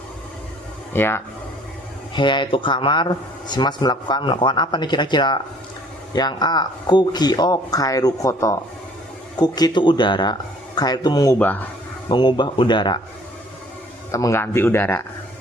Ya. Heya itu kamar, shimasu melakukan apa nih kira-kira? Yang A, kuki o kairu koto. Kuki itu udara, kairu itu mengubah udara atau mengganti udara.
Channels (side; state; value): both; normal; correlation 0.56